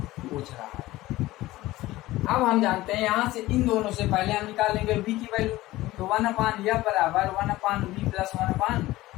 रहा है। अब हम जानते हैं यहाँ से इन दोनों से पहले हम निकालेंगे v की वैल्यू। तो 1/f बराबर 1/v प्लस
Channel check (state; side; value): quieter; right; 17.4 dB